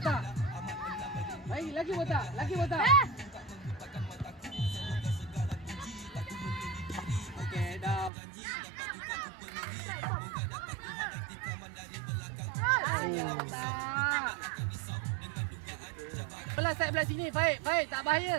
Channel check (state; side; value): drops out; left; at 8.1 s